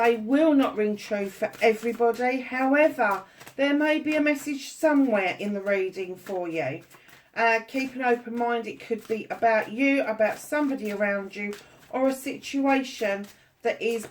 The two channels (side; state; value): both; identical; correlation 1.00